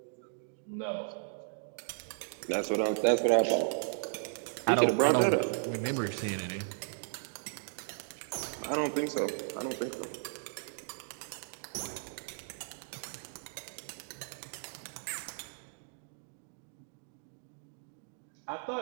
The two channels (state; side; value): silent; left; digital silence